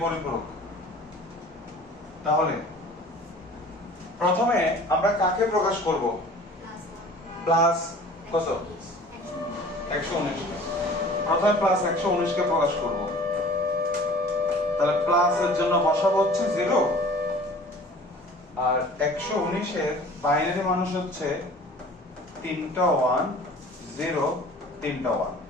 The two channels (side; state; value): both; normal; correlation 0.46